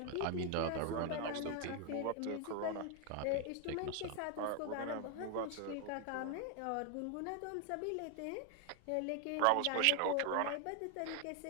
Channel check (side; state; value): both; different; correlation 0.00